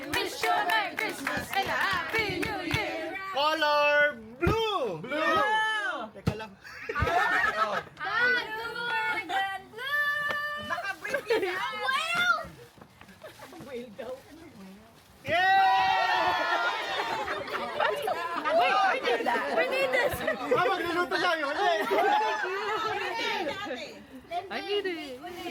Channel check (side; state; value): both; identical; correlation 1.00